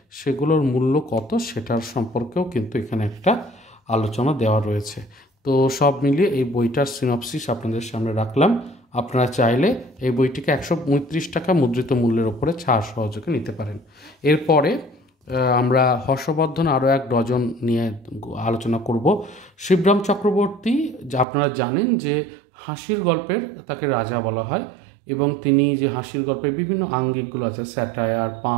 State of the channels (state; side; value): drops out; left; at 21.2 s